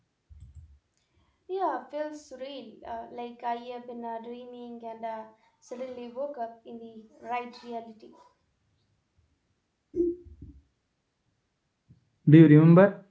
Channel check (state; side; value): identical; both; correlation 1.00